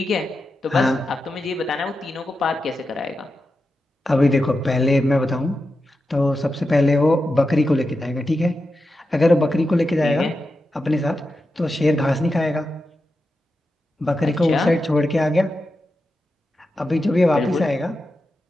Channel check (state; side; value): normal; both; correlation 0.90